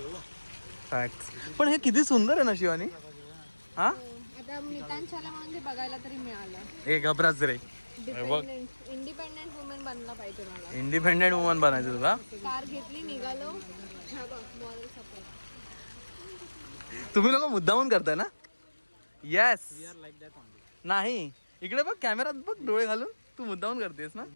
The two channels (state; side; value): inverted; both; correlation -1.00